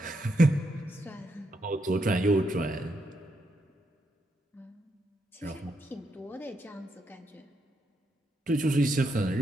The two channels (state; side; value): normal; both; correlation 0.80